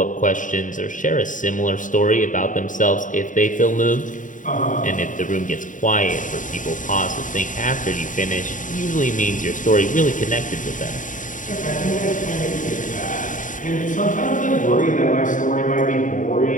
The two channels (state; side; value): late; right; 0.38 ms